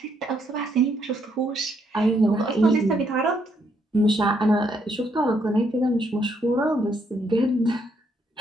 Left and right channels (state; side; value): normal; both; correlation 0.73